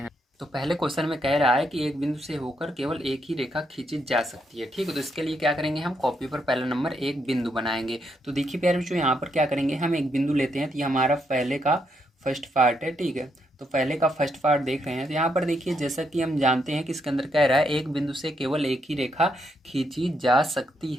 तो पहले क्वेश्चन में कह रहा है कि एक बिंदु से होकर केवल एक ही रेखा खींची जा सकती है। ठीक है, तो इसके लिए क्या करेंगे, हम कॉपी पर पहला नंबर एक बिंदु बनाएंगे। तो देखिए प्यारे बच्चों, यहाँ पर क्या करेंगे, हम एक बिंदु लेते हैं। तो ये हमारा पहले का फर्स्ट पार्ट है। ठीक है, तो पहले का फर्स्ट पार्ट देख रहे हैं। तो यहाँ पर देखिए, जैसा कि हम जानते हैं कि इसके अंदर कह रहा है एक बिंदु से केवल एक ही रेखा खींची जा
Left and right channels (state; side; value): normal; both; correlation 0.77